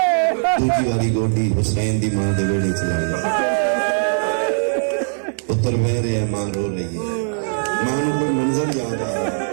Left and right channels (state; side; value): silent; left; digital silence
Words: دوجی والی گوڈی حسین دی ماں دے بیڑے چلائیں گے، پتر بہ رہے ہیں، ماں رو رہی ہے، ماں نو کوئی منظر یاد آ رہا ہے،